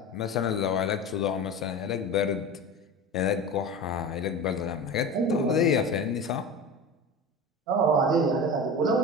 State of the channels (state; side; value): normal; both; correlation 0.30